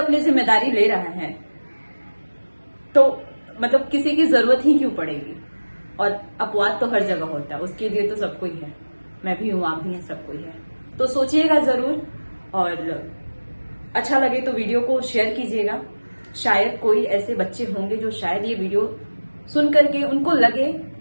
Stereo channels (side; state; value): both; inverted; correlation -1.00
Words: जिम्मेदारी ले रहा है तो मतलब किसी की जरूरत ही क्यों पड़ेगी। और अपवाद तो हर जगह होता है, उसके लिए तो सबको ही है, मैं भी हूं, आप भी हैं, सबको ही है। तो सोचिएगा जरूर, और अच्छा लगे तो वीडियो को शेयर कीजिएगा। शायद कोई ऐसे बच्चे होंगे जो शायद ये वीडियो सुन करके उनको लगे